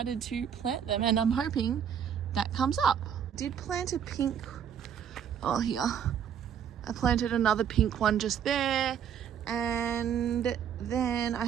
to plant them, and I'm hoping that comes up. Did plant a pink, oh here, I planted another pink one just there, and then I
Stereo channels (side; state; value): left; quieter; 8.5 dB